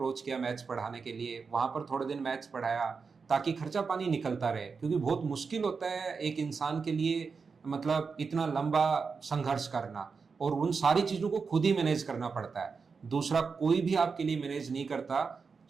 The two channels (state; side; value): quieter; left; 5.1 dB